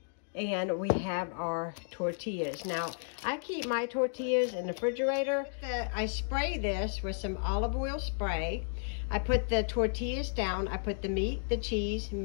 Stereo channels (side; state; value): right; silent; digital silence